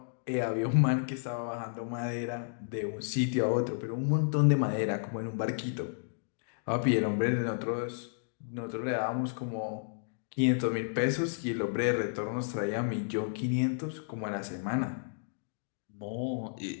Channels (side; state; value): right; silent; digital silence